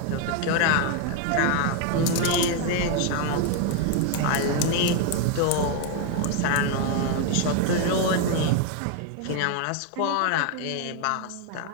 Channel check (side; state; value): both; different; correlation 0.01